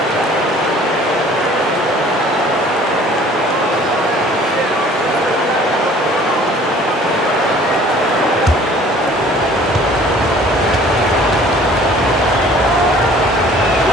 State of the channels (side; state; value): both; normal; correlation 0.52